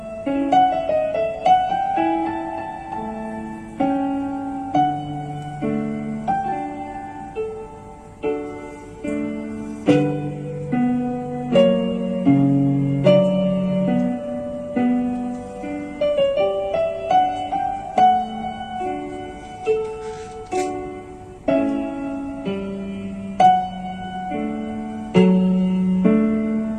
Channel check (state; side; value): identical; both; correlation 1.00